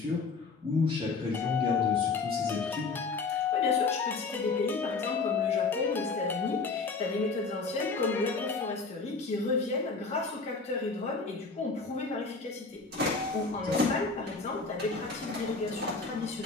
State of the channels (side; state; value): right; quieter; 4.3 dB